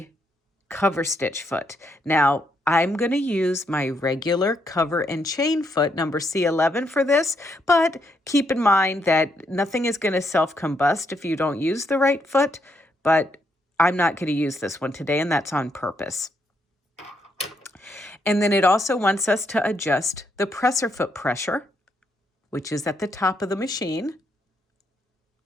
cover stitch foot. Now, I'm going to use my regular cover and chain foot, number C11 for this, but keep in mind that nothing is going to self-combust if you don't use the right foot, but I'm not going to use this one today, and that's on purpose. And then it also wants us to adjust the presser foot pressure, which is at the top of the machine,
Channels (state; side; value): normal; both; correlation 0.76